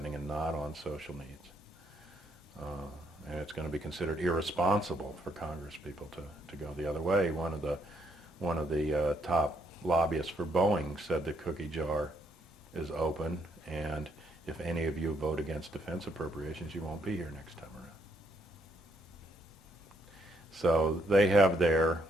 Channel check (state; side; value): normal; both; correlation 0.73